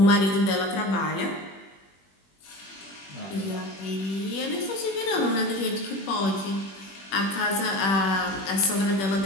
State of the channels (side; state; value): right; late; 21 ms